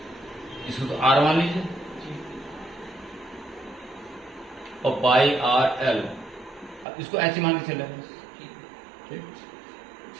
इसको तो आर मान लीजिए और पाई आर एल, अब इसको एच मान के चले। ठीक,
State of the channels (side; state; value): left; drops out; at 6.9 s